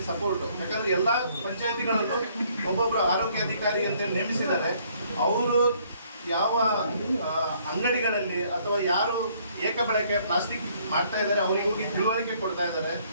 ಸಪೋರ್ಟು. ಯಾಕಂದರೆ ಎಲ್ಲ ಪಂಚಾಯತಿಗಳಲ್ಲೂ ಒಬ್ಬೊಬ್ಬರು ಆರೋಗ್ಯ ಅಧಿಕಾರಿ ಅಂತ ನೇಮಿಸಿದ್ದಾರೆ. ಅವರು ಯಾವ ಅಂಗಡಿಗಳಲ್ಲಿ ಅಥವಾ ಯಾರು ಏಕಬಳಕೆ ಪ್ಲಾಸ್ಟಿಕ್ ಮಾಡ್ತಾ ಇದ್ದಾರೆ ಅವರಿಗೆ ಹೋಗಿ ತಿಳುವಳಿಕೆ ಕೊಡ್ತಾ ಇದ್ದಾರೆ.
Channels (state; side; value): inverted; both; correlation -0.64